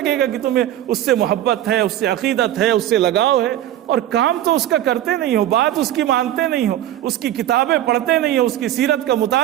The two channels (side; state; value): left; quieter; 12.6 dB